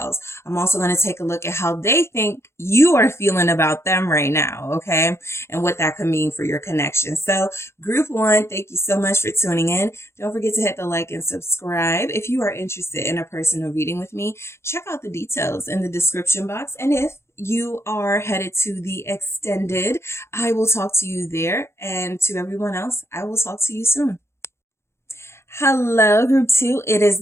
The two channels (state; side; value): late; right; 0.13 ms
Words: I'm also going to take a look at how they think you are feeling about them right now, okay? And what that could mean for your connection. So group one, thank you so much for tuning in. Don't forget to hit the like and subscribe. If you are interested in a personal reading with me, check out the details in the description box. And if you are headed to the extended, I will talk to you there. And to everyone else, I will talk to you soon. Hello, group two. It is